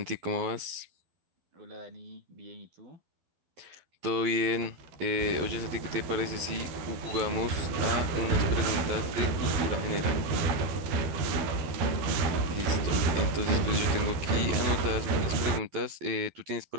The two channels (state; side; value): late; left; 12 ms